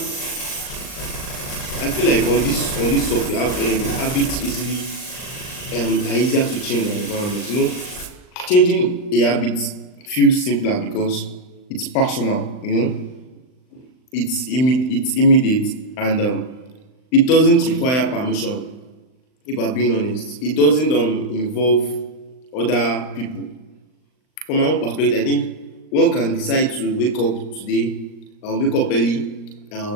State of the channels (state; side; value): late; right; 39 ms